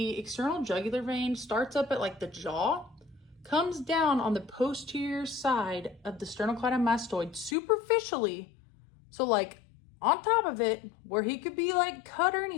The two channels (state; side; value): drops out; right; at 7.6 s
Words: external jugular vein starts up at like the jaw, comes down on the posterior side of the sternocleidomastoid superficially. So like on top of it, where he could be like cut or